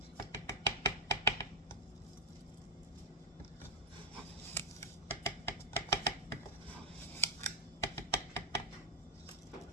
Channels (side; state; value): both; normal; correlation -0.07